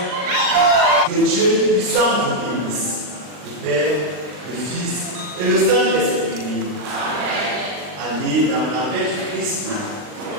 Dieu puissant vous bénisse, le Père, le Fils et le Saint-Esprit. Allez dans la paix du Christ.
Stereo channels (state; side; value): late; left; 39 ms